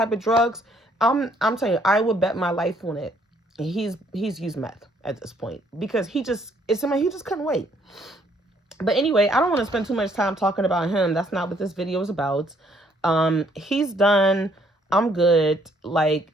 of drugs. I'm telling you, I would bet my life on it. He's used meth at this point because he just couldn't wait. But anyway, I don't want to spend too much time talking about him. That's not what this video is about. He's done. I'm good. Like,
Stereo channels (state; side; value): normal; both; correlation 0.66